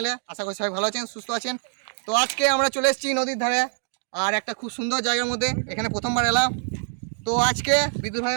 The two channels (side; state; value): left; silent; 62 dB below the other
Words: আশা করি সবাই ভালো আছেন, সুস্থ আছেন। তো আজকে আমরা চলে এসেছি নদীর ধারে, আর একটা খুব সুন্দর জায়গার মধ্যে। এখানে প্রথমবার এলাম। তো আজকে বিদ্যুৎ